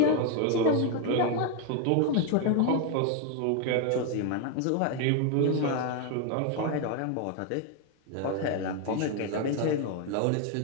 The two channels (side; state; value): both; different; correlation 0.00